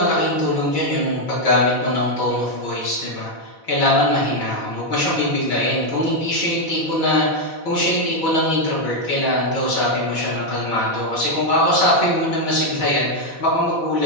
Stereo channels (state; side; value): late; right; 4.1 ms